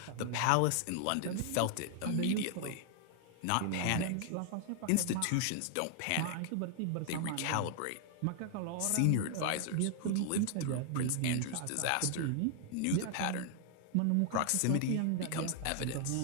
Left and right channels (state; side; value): different; both; correlation 0.00